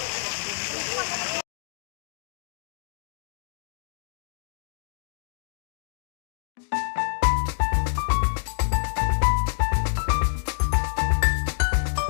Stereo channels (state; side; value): silent; right; digital silence